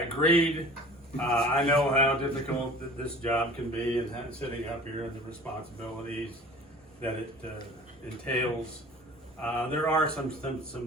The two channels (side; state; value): both; normal; correlation 0.44